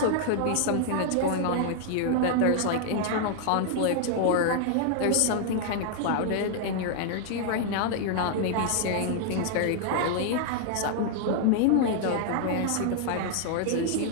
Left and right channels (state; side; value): different; both; correlation 0.00